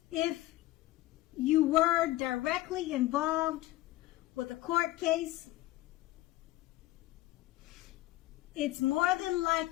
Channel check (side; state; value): right; quieter; 17.0 dB